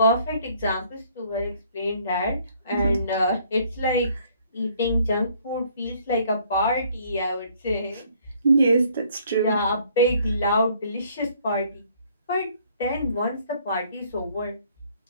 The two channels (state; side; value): inverted; both; correlation -0.62